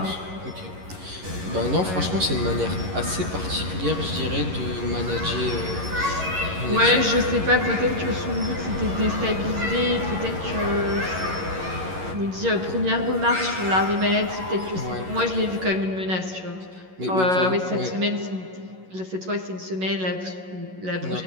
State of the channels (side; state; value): left; late; 11 ms